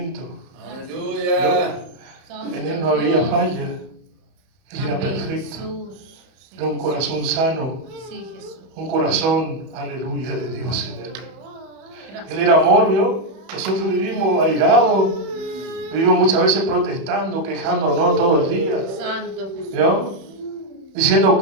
Aleluya. En Él no había falla. Él era perfecto. Era un corazón sano. Sí, Jesús. Un corazón, aleluya, de Dios en Él. Él era amor, ¿vio? Nosotros vivimos airados. Vivimos muchas veces protestando, quejándonos todo el día. Santo Jesús. ¿Vio? Diciendo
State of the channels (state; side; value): late; left; 31 ms